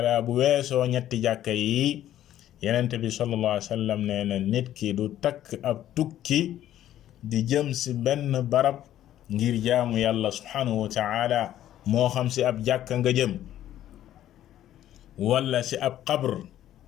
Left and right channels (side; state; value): right; quieter; 12.3 dB